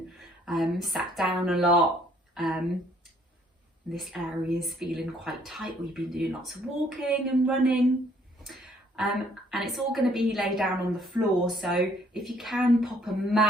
sat down a lot, this area is feeling quite tight, or you've been doing lots of walking and running. And it's all going to be laid down on the floor, so if you can pop a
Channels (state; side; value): normal; both; correlation 0.63